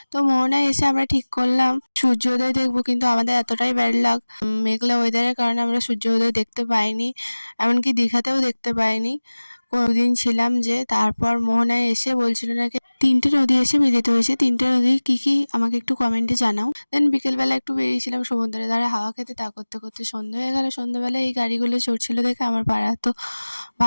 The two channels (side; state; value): both; inverted; correlation -1.00